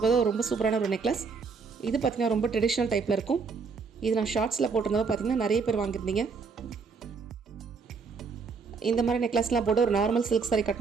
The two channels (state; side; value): quieter; left; 5.0 dB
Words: ரொம்ப சூப்பரான ஒரு நெக்லஸ். இது பார்த்தீங்கன்னா ரொம்ப ட்ரெடிஷ்னல் டைப்பில் இருக்கும். இது நான் ஷார்ட்ஸில் போட்டிருந்தப்போ பார்த்தீங்கன்னா நிறைய பேர் வாங்கியிருந்தீங்க. இந்த மாதிரி நெக்லஸ்லாம் போட்டு ஒரு நார்மல் சில்க் சாரி